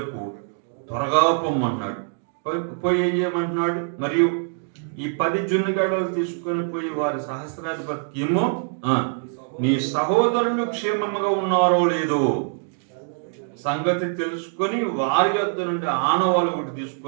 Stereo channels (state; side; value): silent; left; 62 dB below the other